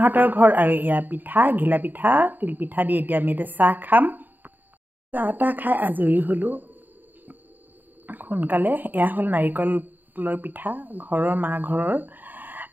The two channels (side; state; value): left; late; 0.088 ms